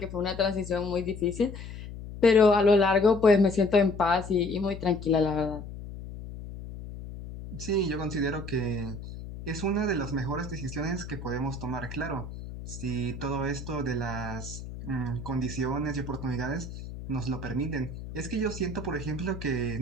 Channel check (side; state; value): left; noise; hum, 11 dB below the sound